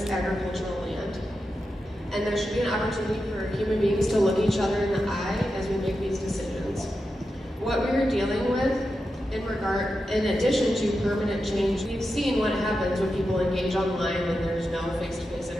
agricultural land. And there should be an opportunity for human beings to look each other in the eye as we make these decisions. What we are dealing with in addition to permanent change, we've seen what happens when people engage online and there's no face-to-face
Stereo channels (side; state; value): both; normal; correlation 0.89